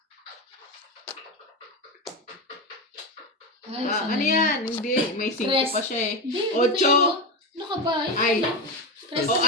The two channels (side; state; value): both; normal; correlation 0.16